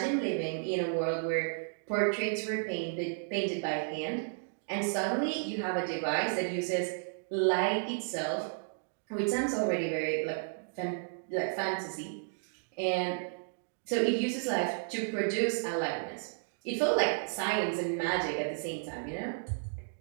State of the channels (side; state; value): left; silent; digital silence